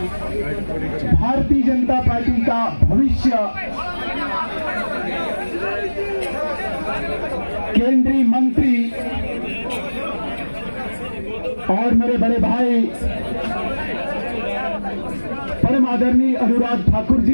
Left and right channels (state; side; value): inverted; both; correlation -1.00